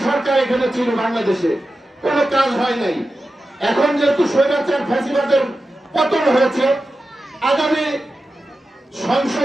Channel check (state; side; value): normal; both; correlation 0.92